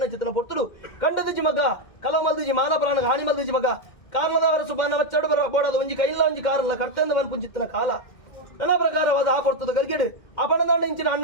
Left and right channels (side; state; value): right; late; 2.1 ms